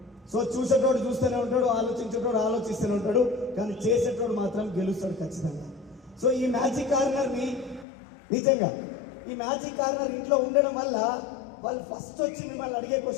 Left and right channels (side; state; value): right; drops out; at 7.9 s